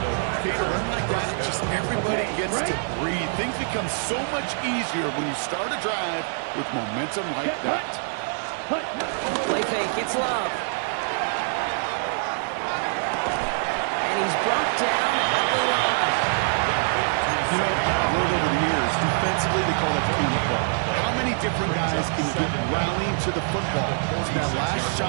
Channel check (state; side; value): silent; left; digital silence